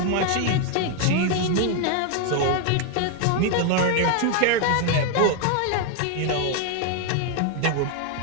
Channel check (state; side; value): different; both; correlation 0.01